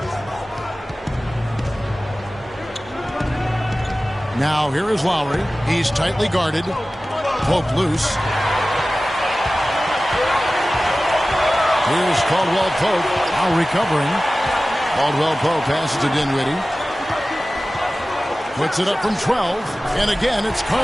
Now here is Lowry. He's tightly guarded. Pope loose. Here's Caldwell Pope. Now recovering. Caldwell Pope passes to Dinwiddie. Puts it up from 12. And again, it's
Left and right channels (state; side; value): normal; both; correlation 0.96